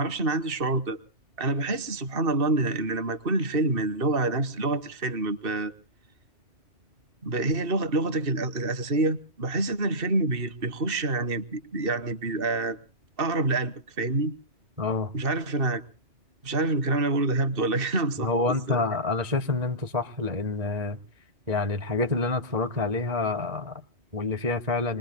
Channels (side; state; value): left; late; 2.6 ms